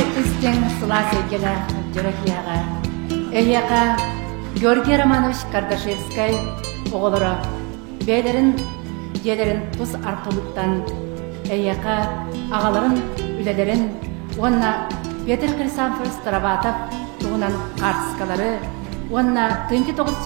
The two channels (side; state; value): left; quieter; 31.2 dB